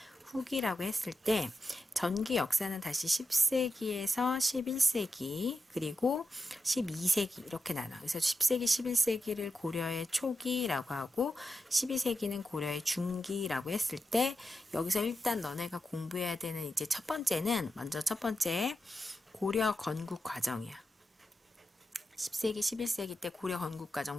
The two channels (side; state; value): both; normal; correlation 0.89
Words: 후기라고 했을 때 전기 역사는 다시 10세기에서 11세기 그리고 12세기 이렇게 나눠. 그래서 10세기, 11세기를 고려의 초기라고 하고 12세기는 고려의 중기라고 했을 때 여기서 일단 너네가 공부해야 되는 이제 첫 번째는 먼저 첫 번째 고려 건국 과정이야. 10세기, 11세기 때 고려 건국